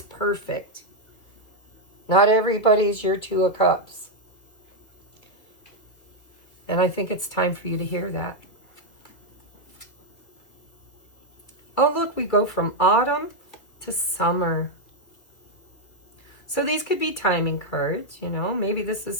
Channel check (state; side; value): late; right; 2.8 ms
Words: perfect. Not everybody's your Two of Cups. And I think it's time for you to hear that. Oh, look, we go from autumn to summer. So these could be timing cards, you know. Maybe this is